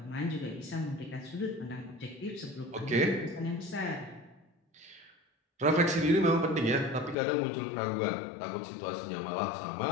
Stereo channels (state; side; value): drops out; right; at 7.2 s